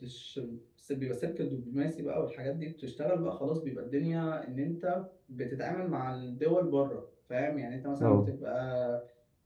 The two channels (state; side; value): identical; both; correlation 1.00